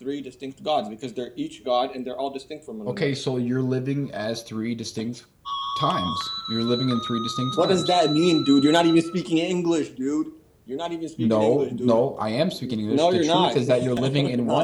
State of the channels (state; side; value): identical; both; correlation 1.00